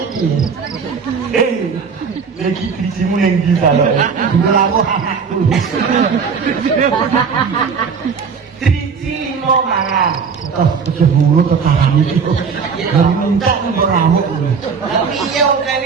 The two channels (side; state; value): left; quieter; 5.8 dB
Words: Lagi bijimu yang bisa loh. Melaku anakku. Biji 5 mangan. Oh, keceburu ke kanan itu. Dari minta beramuk. Tapi iya udah